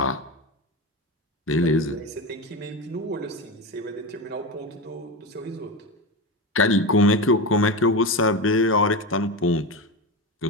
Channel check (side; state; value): both; normal; correlation 0.20